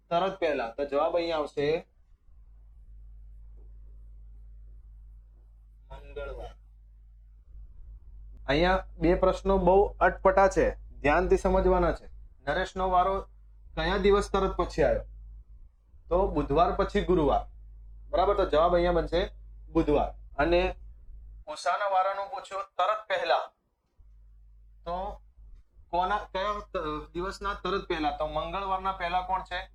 તરત પહેલા. તો જવાબ અહીંયા આવશે મંગળવાર. અહીંયા બે પ્રશ્નો બહુ અટપટા છે, ધ્યાનથી સમજવાના છે. નરેશનો વારો કયા દિવસ તરત પછી આવ્યો? તો બુધવાર પછી ગુરુવાર, બરાબર. તો જવાબ અહીંયા બનશે બુધવાર. અને ઉષાના વારાનું પૂછ્યો તરત પહેલા, તો કયા દિવસના તરત પહેલા? તો મંગળવારના પહેલા કોણ છે?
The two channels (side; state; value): both; identical; correlation 1.00